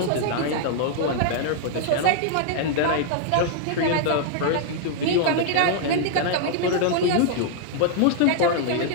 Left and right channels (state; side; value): different; both; correlation -0.01